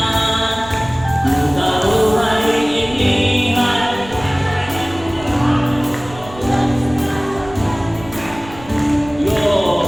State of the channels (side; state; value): right; noise; rumble, 17 dB below the sound